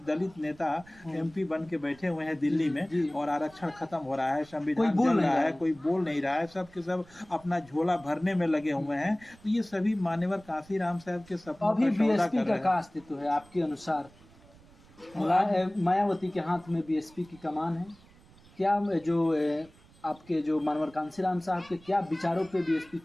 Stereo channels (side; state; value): right; noise; rumble, 25 dB below the sound